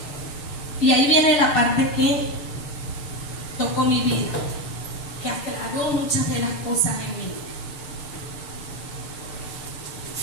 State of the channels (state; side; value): late; right; 6.7 ms